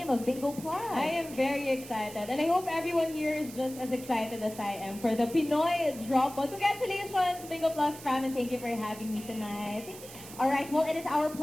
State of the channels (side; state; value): right; noise; hiss, 15 dB below the sound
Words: of Bingo Plus? I am very excited, and I hope everyone here is just as excited as I am for the Pinoy Drop Ball. Congratulations, Bingo Plus fam, and thank you for having me tonight. All right, well, it is our